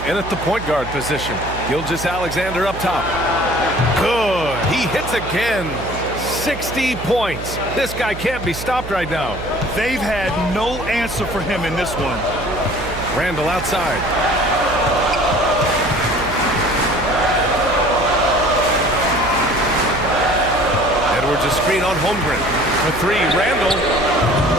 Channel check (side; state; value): right; noise; hum, 10 dB below the sound